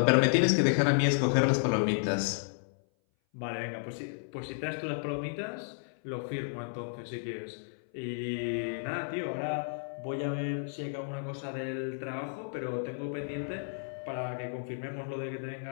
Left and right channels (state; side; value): silent; right; 56 dB below the other